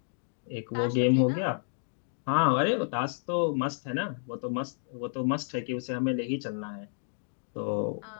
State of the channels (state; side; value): silent; right; digital silence